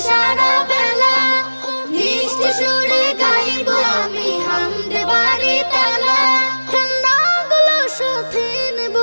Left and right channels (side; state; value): both; inverted; correlation -1.00